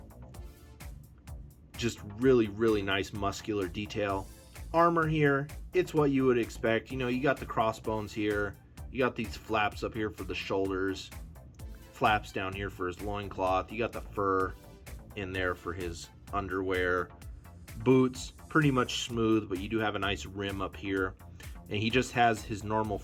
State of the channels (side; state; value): both; identical; correlation 1.00